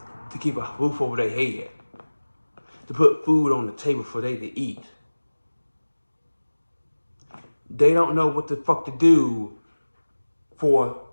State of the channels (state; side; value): inverted; both; correlation -1.00